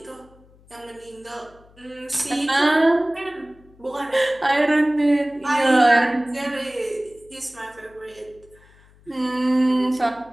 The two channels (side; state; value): left; noise; hum, 28 dB below the sound